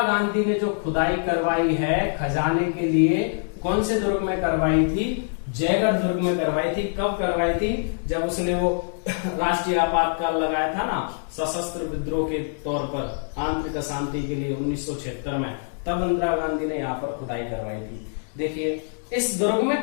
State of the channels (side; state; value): right; silent; digital silence